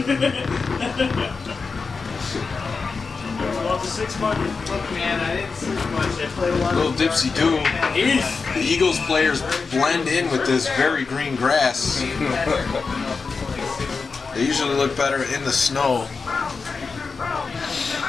Well, the 6 button. Look, man, I didn't sleep much. I played a lot. Little dipsy do. The Eagles players blend in with this very green grass. They usually look better in the snow.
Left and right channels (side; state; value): right; quieter; 4.7 dB